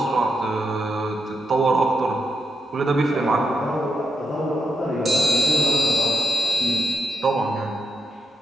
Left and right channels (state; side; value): normal; both; correlation 0.84